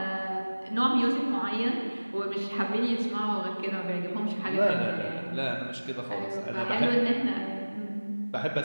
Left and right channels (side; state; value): both; inverted; correlation -1.00